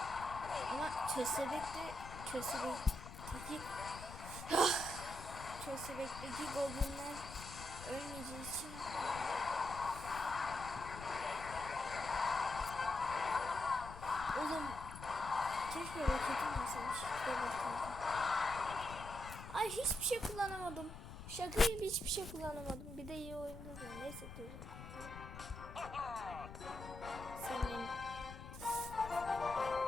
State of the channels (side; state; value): left; noise; rumble, 12 dB below the sound